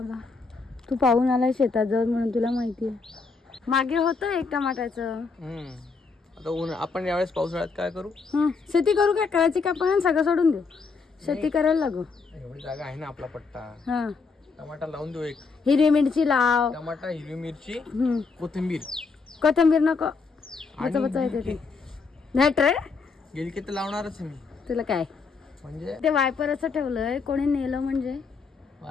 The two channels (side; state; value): right; quieter; 4.6 dB